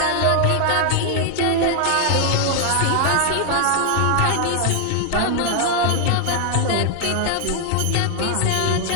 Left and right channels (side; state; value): both; different; correlation 0.00